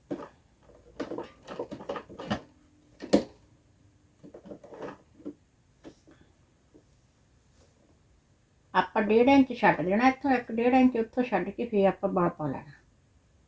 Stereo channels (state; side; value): identical; both; correlation 1.00